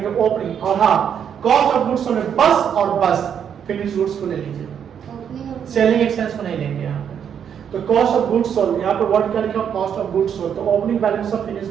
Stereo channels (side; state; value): left; quieter; 8.2 dB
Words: ओपनिंग, और हाँ कॉस्ट ऑफ गुड्स सोल्ड में बस और बस फिनिश गुड्स को ले लीजिए, सेलिंग एक्सपेंस को नहीं लेंगे यहाँ पे। तो कॉस्ट ऑफ गुड्स सोल्ड, यहाँ पे वर्ड क्या लिखा, कॉस्ट ऑफ गुड्स सोल्ड, तो opening balance of